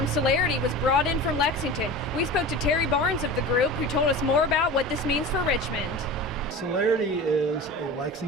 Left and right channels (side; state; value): both; normal; correlation 0.33